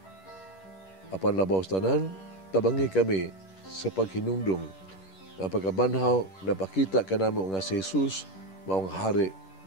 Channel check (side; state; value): right; late; 10 ms